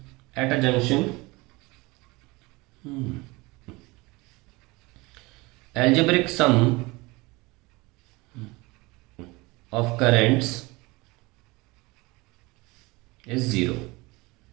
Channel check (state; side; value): quieter; left; 23.4 dB